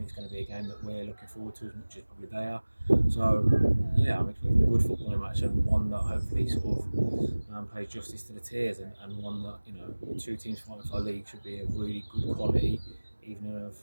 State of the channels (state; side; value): inverted; both; correlation -1.00